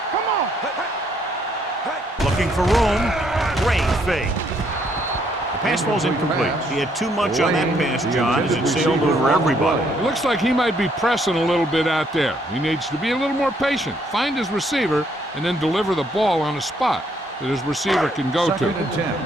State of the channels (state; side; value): normal; both; correlation 0.70